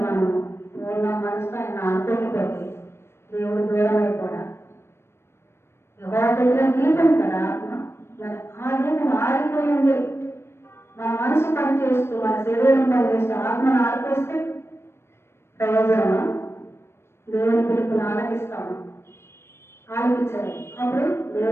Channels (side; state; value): right; late; 0.12 ms